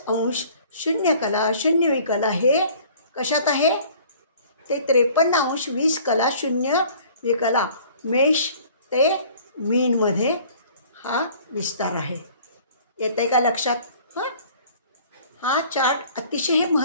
0 कला 0 विकला हे कशात आहे, ते 53° 20 कला 0 विकला. मेष ते मीनमध्ये हा विस्तार आहे. येत आहे का लक्षात? हां, हा चार्ट अतिशय हे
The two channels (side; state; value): both; inverted; correlation -0.51